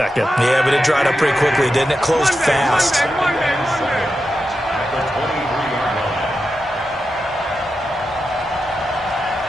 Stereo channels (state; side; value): normal; both; correlation 0.89